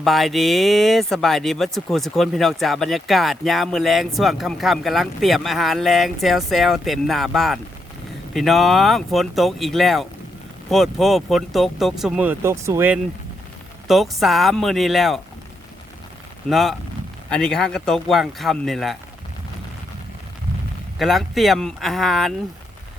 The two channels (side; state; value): both; normal; correlation 0.80